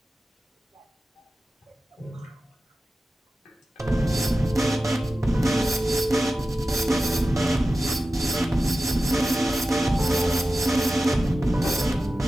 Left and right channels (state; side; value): normal; both; correlation 0.93